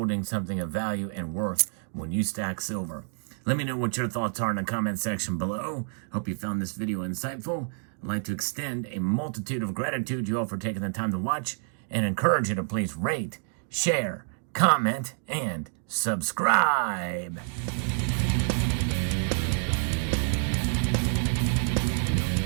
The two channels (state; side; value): silent; left; digital silence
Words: something of value and worth when you stack silver. Let me know what your thoughts are in the comment section below. Hope you found this video insightful. I'd like to extend a multitude of gratitude to you all for taking the time to watch, and encourage you to please rate, share, comment, and subscribe.